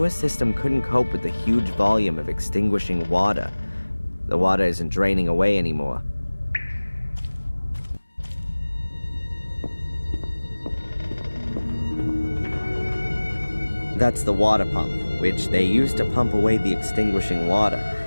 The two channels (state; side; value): inverted; both; correlation -1.00